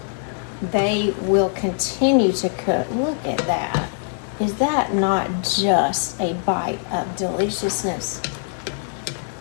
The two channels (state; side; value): silent; right; digital silence